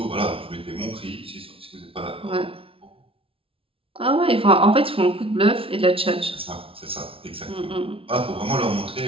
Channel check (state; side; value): late; left; 0.26 ms